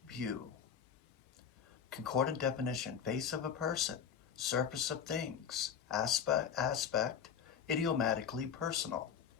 view. Concordant definition, face of a person, surface of things, aspect, idiomatically personal.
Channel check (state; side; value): quieter; right; 7.7 dB